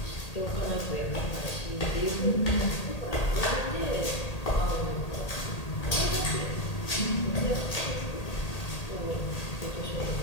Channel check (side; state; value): right; late; 1.8 ms